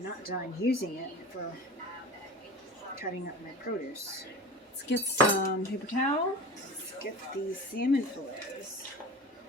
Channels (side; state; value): both; normal; correlation 0.33